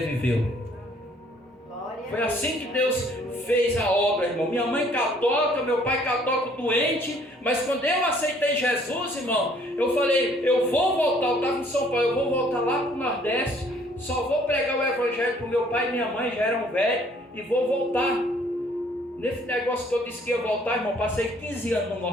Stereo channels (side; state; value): both; normal; correlation 0.60